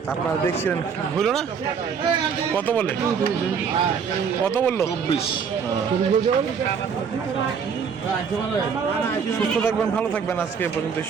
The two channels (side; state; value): left; quieter; 6.5 dB